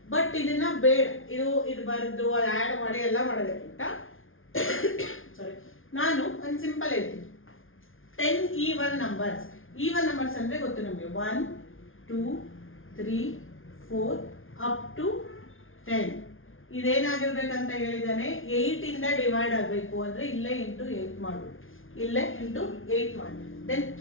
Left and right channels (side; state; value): right; late; 0.59 ms